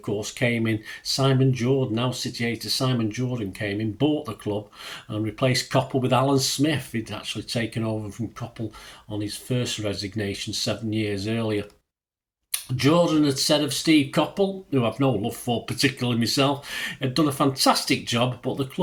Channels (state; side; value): identical; both; correlation 1.00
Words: course, came in. Simon Jordan, now City hater Simon Jordan came in, bought the club and replaced Coppell with Alan Smith. He'd actually taken over from Coppell on his first resignation 7 years earlier. Jordan had said of Steve Coppell, who I've no love for particularly myself, had done a fantastic job, but the